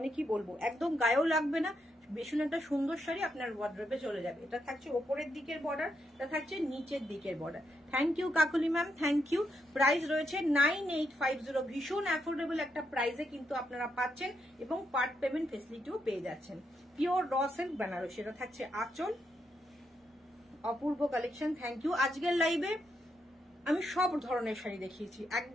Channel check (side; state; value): both; normal; correlation 0.81